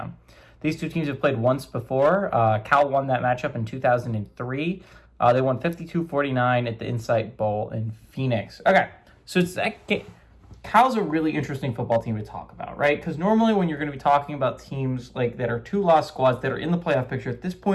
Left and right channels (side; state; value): both; identical; correlation 1.00